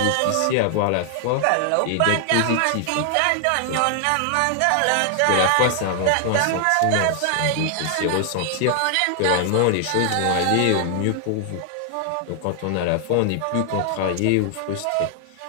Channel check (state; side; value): different; both; correlation 0.00